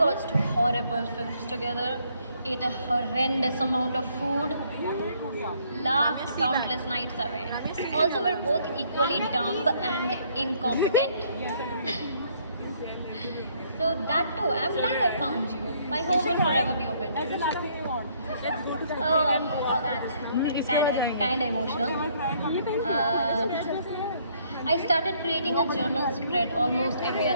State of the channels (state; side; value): inverted; both; correlation -0.66